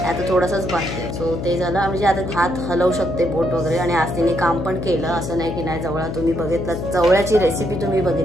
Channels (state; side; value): noise; left; hum, 5 dB below the sound